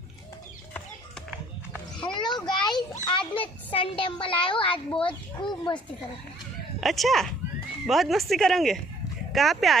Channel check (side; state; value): both; normal; correlation 0.60